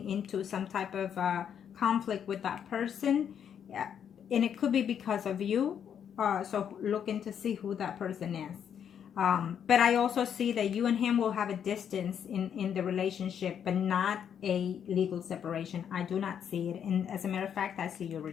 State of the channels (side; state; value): right; quieter; 8.5 dB